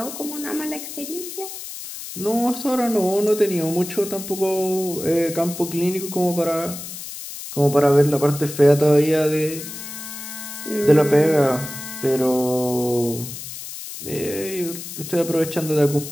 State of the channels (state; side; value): noise; left; hiss, 10 dB below the sound